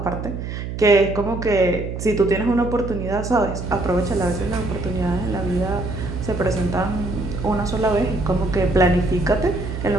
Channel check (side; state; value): right; noise; hum, 6 dB below the sound